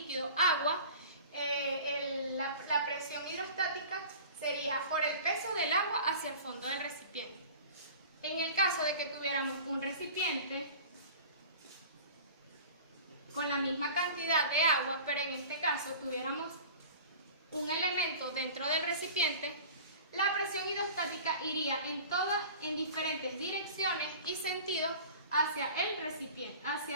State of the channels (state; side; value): inverted; both; correlation -0.40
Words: agua, la presión hidrostática sería por el peso del agua hacia el fondo del recipiente. En el caso de que tuviéramos un recipiente con la misma cantidad de agua, pero en este caso tuviéramos un elemento dentro del recipiente, la presión hidrostática iría en diferentes direcciones y sentidos hacia el recipiente,